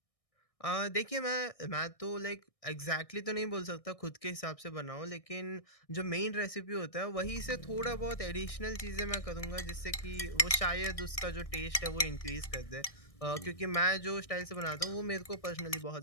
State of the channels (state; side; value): late; right; 1.6 ms